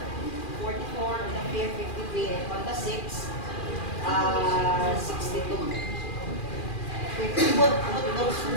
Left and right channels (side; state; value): right; late; 2.4 ms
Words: 44 on the 5, 53, and on the 6, 62. If you would put those